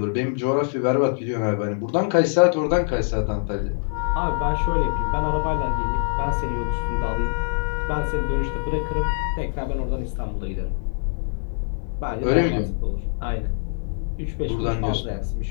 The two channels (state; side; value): silent; right; digital silence